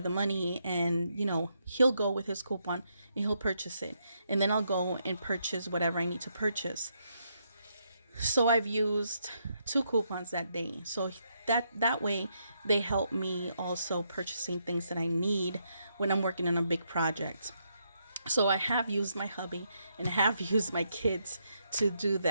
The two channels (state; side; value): inverted; both; correlation -0.78